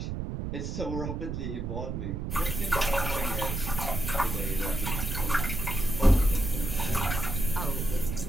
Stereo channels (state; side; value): noise; right; rumble, 4 dB below the sound